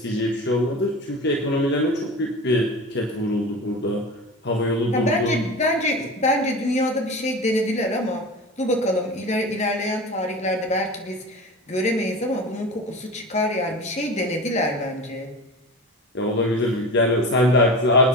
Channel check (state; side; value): normal; both; correlation 0.31